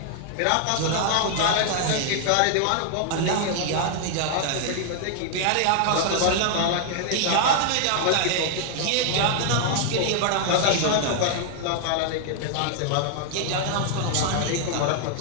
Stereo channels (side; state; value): both; different; correlation 0.00